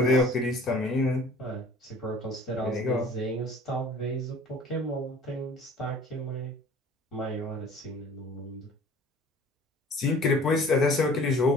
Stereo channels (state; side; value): normal; both; correlation 0.48